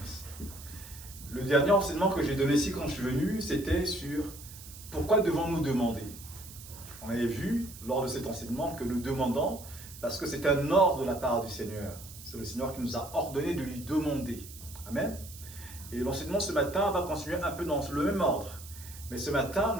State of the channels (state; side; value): noise; right; hiss, 16 dB below the sound